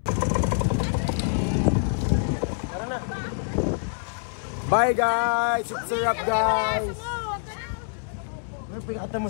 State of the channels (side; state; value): right; silent; 61 dB below the other